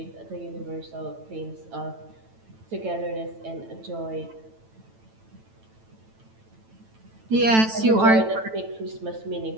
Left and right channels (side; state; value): left; late; 9.0 ms